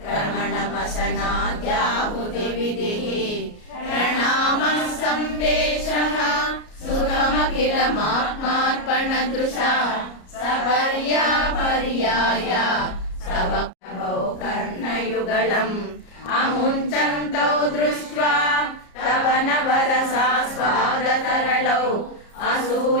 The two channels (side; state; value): right; late; 33 ms